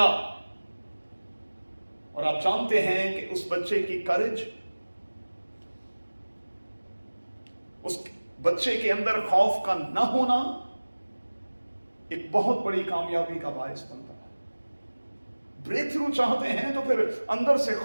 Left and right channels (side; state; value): both; inverted; correlation -1.00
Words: اور آپ جانتے ہیں کہ اس بچے کی کرج، اس بچے کے اندر خوف کا نہ ہونا ایک بہت بڑی کامیابی کا باعث بنتا ہے۔ بریک تھرو چاہتے ہیں تو پھر اندر سے